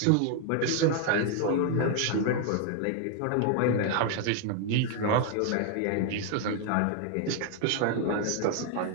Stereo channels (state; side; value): different; both; correlation 0.00